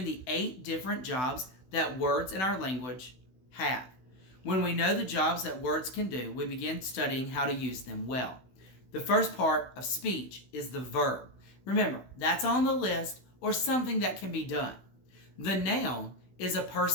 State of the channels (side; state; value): right; late; 16 ms